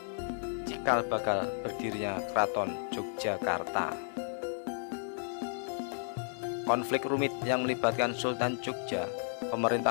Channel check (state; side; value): silent; right; digital silence